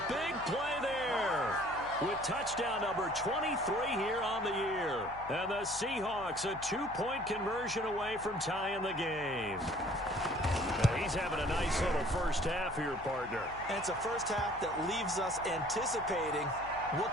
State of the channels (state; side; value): noise; left; hum, 18 dB below the sound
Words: big play there. With touchdown number 23 here on the year. And the Seahawks a 2-point conversion away from tying the game. Now he's having a nice little first half here, partner. And it's a first half that leaves us anticipating what